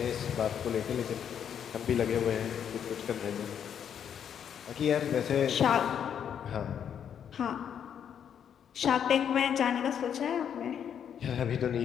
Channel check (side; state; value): right; quieter; 8.5 dB